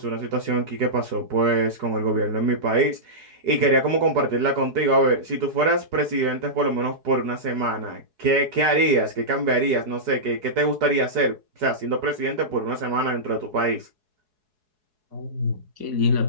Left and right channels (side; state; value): left; late; 4.7 ms